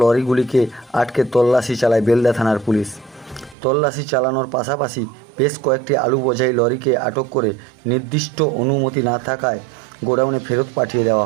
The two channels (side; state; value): left; drops out; at 3.6 s